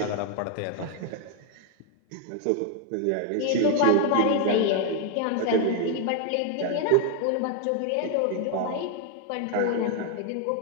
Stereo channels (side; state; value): both; different; correlation 0.01